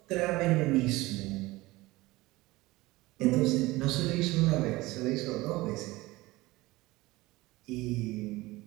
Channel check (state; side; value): quieter; left; 20.0 dB